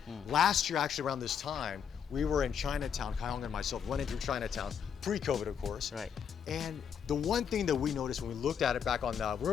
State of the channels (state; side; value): quieter; right; 7.6 dB